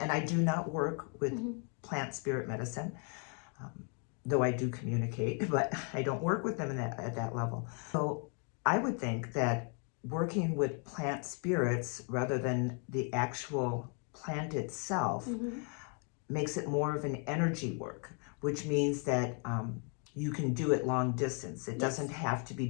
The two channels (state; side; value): quieter; right; 39.6 dB